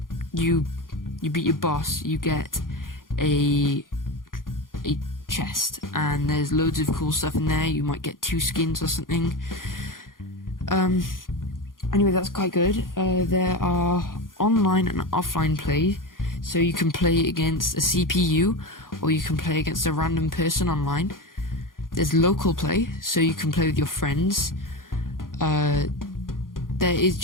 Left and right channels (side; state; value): right; late; 0.90 ms